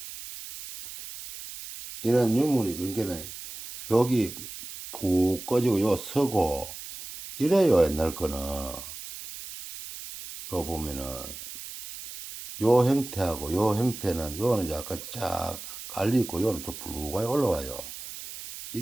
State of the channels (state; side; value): noise; right; hiss, 11 dB below the sound